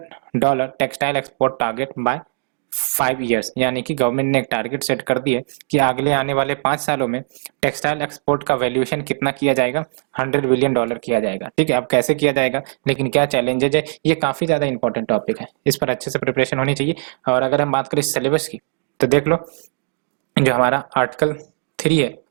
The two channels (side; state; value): left; silent; digital silence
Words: textile export target by 5 years, यानी कि गवर्नमेंट ने एक टारगेट सेट कर दिया कि अगले आने वाले 5 सालों में टेक्सटाइल एक्सपोर्ट का वैल्यूएशन कितना किया जाएगा, $100 बिलियन किया जाएगा। ठीक है, अब कैसे किया जाएगा, लेकिन क्या चैलेंजेज है, ये काफी ज्यादा इंपॉर्टेंट टॉपिक है, इस पर अच्छे से प्रिपरेशन होनी चाहिए। और अगर हम बात करें सिलेबस की, तो देख लो जो हमारा आर्टिकल 3 है